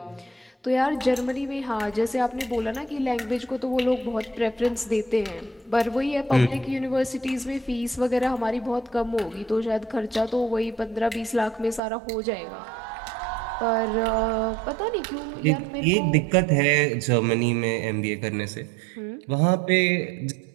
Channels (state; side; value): drops out; left; at 11.8 s